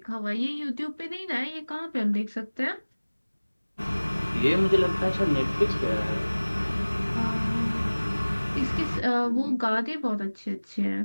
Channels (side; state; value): both; inverted; correlation -1.00